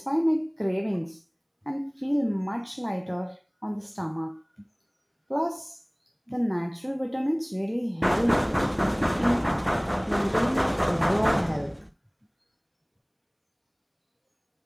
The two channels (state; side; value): identical; both; correlation 1.00